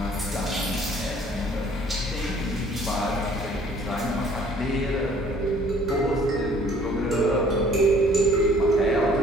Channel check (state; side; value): normal; both; correlation 0.56